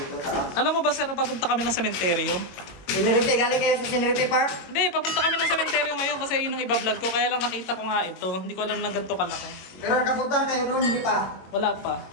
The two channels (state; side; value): late; right; 22 ms